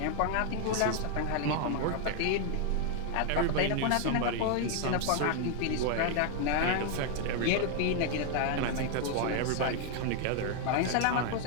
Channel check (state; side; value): different; both; correlation 0.00